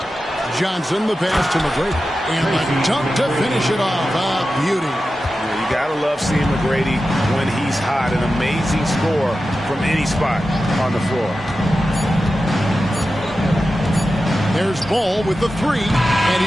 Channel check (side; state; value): both; normal; correlation 0.92